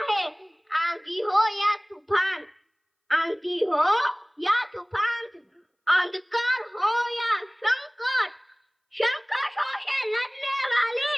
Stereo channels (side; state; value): both; identical; correlation 1.00